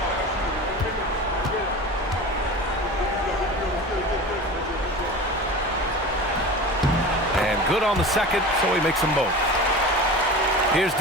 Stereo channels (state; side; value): normal; both; correlation 0.33